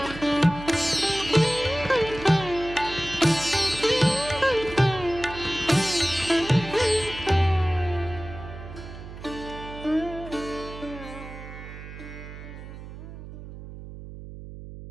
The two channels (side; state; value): right; noise; hum, 13 dB below the sound